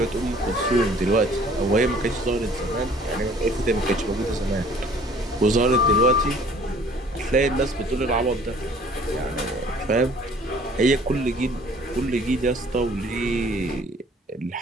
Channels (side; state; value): both; normal; correlation 0.54